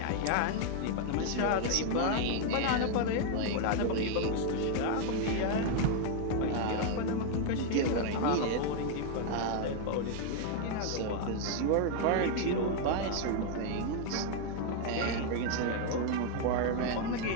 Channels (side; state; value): both; different; correlation 0.00